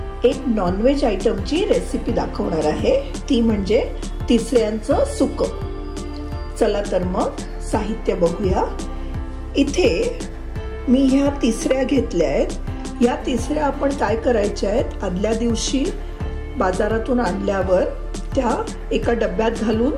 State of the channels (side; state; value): both; identical; correlation 1.00